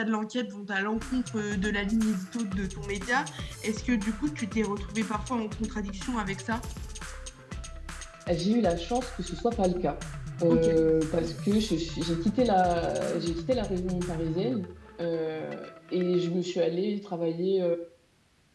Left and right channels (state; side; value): identical; both; correlation 1.00